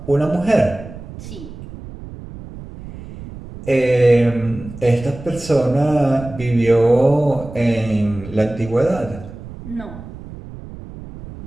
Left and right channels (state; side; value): noise; right; rumble, 14 dB below the sound